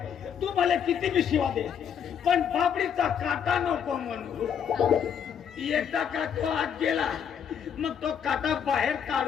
तू मला किती बी शिवा दे पण बापडीचा काटा नको म्हणू. एकदा का तो आत गेला मग तो काटा बाहेर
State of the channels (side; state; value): right; quieter; 8.0 dB